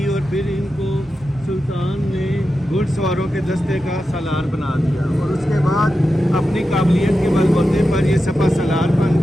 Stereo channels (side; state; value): both; normal; correlation 0.91